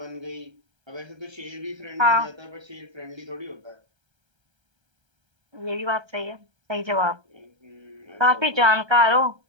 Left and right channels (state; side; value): late; left; 1.3 ms